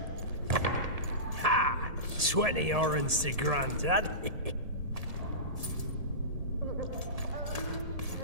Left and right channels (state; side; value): late; left; 1.7 ms